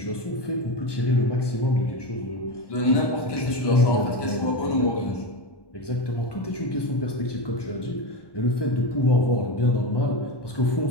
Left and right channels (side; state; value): right; late; 1.2 ms